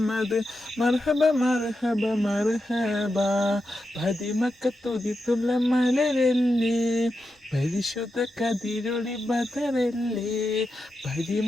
مرحبا مرحبا مرحبا. പതിമക്കത്തുതിത്തുള്ള മലരല്ലേ, പരിശുദ്ധ കതിരൊളി ബദറല്ലേ,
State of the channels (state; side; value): normal; both; correlation 0.88